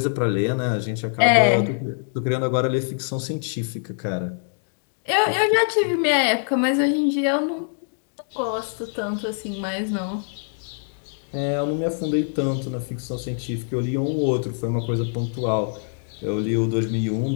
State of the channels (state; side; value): silent; right; digital silence